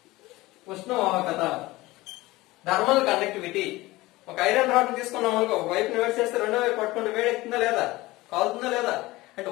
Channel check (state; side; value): quieter; right; 19.6 dB